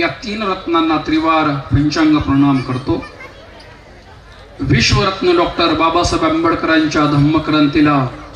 तीन रत्नांना त्रिवार पंचांग प्रणाम करतो। विश्वरत्न डॉक्टर बाबासाहेब आंबेडकरांच्या धम्मक्रांतीला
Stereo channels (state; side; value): identical; both; correlation 1.00